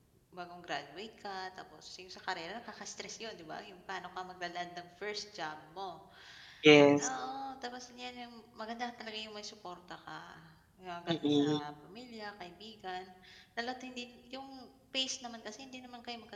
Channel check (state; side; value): identical; both; correlation 1.00